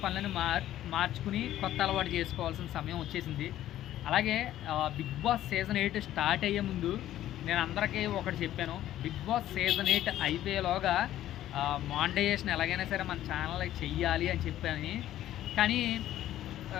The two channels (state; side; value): quieter; right; 13.0 dB